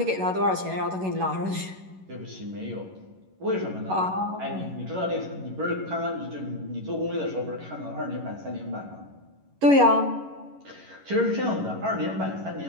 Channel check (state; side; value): late; left; 11 ms